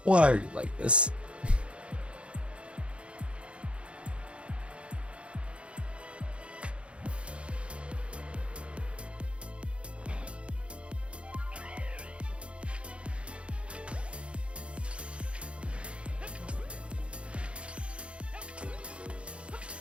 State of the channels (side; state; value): left; late; 0.059 ms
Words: Why are you like this?